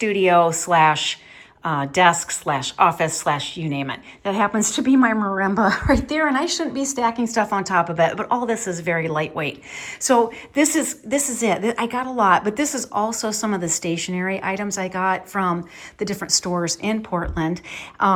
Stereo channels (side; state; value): both; identical; correlation 1.00